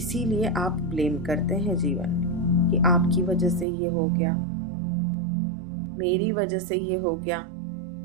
आप ब्लेम करते हैं जीवन में कि आपकी वजह से ये हो गया, मेरी वजह से ये हो गया।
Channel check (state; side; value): drops out; left; at 3.7 s